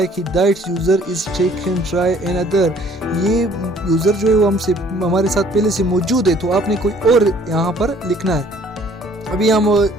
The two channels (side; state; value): both; normal; correlation 0.57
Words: कि that user is taken try another. ये यूज़र जो है वो हमारे साथ पहले से मौजूद है, तो आपने कोई और यहाँ पर लिखना है। अभी हम